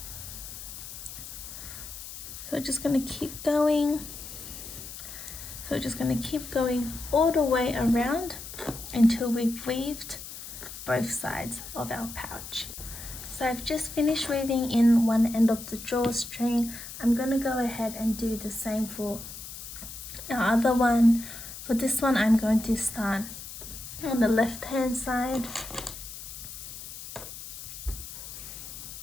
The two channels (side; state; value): left; noise; hiss, 11 dB below the sound